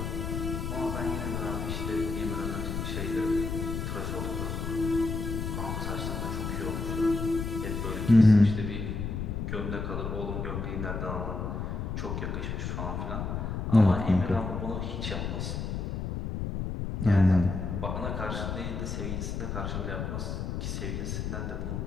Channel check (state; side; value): noise; left; rumble, 3 dB below the sound